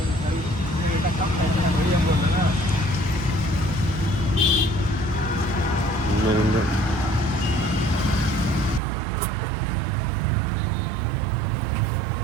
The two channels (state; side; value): drops out; left; at 8.8 s